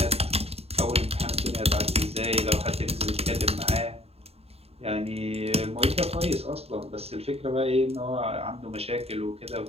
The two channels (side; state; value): left; late; 0.29 ms